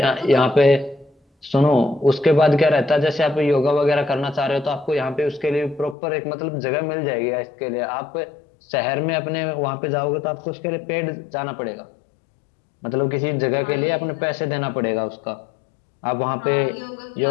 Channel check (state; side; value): drops out; right; at 6.0 s